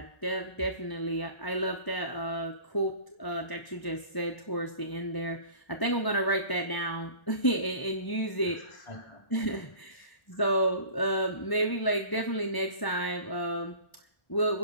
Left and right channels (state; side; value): late; right; 1.0 ms